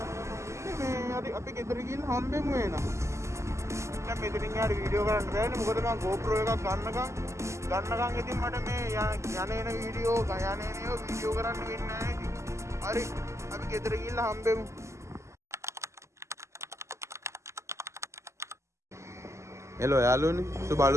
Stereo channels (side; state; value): left; late; 0.13 ms